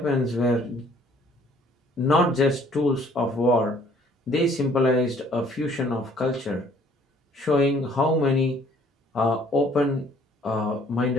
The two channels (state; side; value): normal; both; correlation 0.59